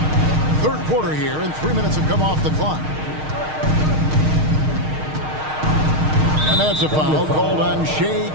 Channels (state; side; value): late; left; 6.5 ms